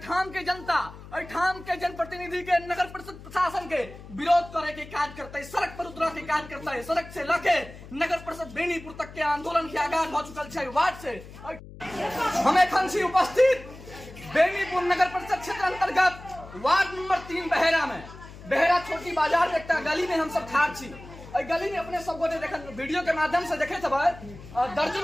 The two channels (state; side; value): noise; left; hum, 16 dB below the sound